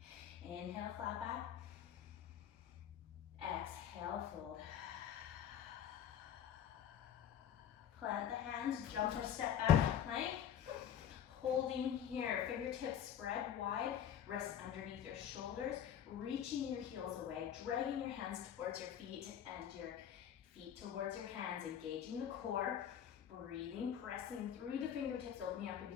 Inhale, flat back. Exhale, fold. Plant the hands, jump or step back, plank. Holding here, fingertips spread wide, wrists underneath your shoulders, reaching your heels away, dragging your hands towards your feet and your feet towards your hands, engaging the core, breathing, pressing through the fingertips, opening up in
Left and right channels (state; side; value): quieter; right; 9.3 dB